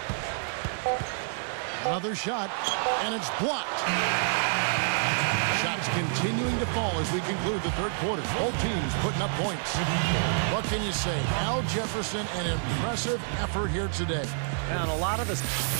Another shot, and it's blocked. Shots continuing to fall as we conclude the third quarter. Both teams putting up points. What can you say? Al Jefferson, an impressive effort here today. And a lot of us.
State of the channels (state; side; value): silent; left; 59 dB below the other